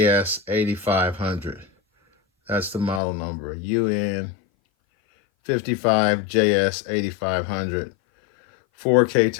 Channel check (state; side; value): drops out; right; at 3.0 s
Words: That's the model number, UN55JS8500. 4K